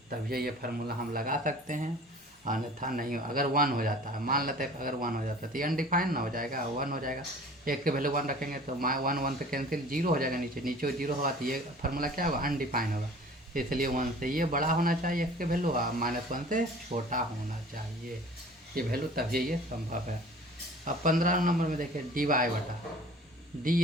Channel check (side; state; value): both; normal; correlation 0.45